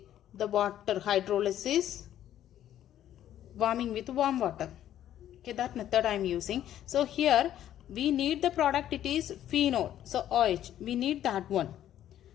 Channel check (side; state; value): right; quieter; 11.6 dB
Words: the water hydrolysis, warming with warm water. Okay, that method I am using. So here we need the product, it is phenol. So OH, we need that one.